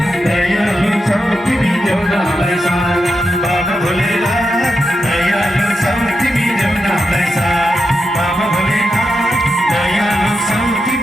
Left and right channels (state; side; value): normal; both; correlation 0.87